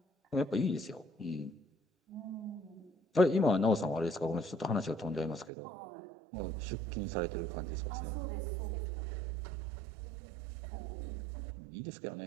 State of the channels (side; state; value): left; drops out; at 5.5 s